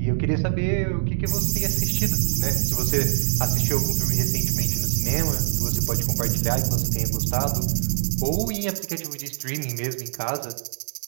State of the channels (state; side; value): silent; left; digital silence